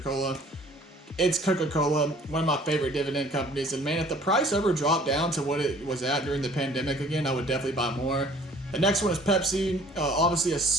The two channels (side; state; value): both; normal; correlation 0.53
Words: It's Coca-Cola, one of my favorite dividend companies. And man, if the price ever dropped down to what it was at during the pandemic again, I would definitely buy more. The next one is Pepsi.